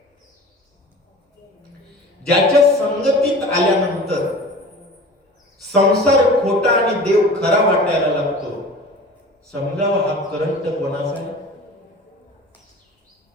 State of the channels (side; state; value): both; normal; correlation 0.39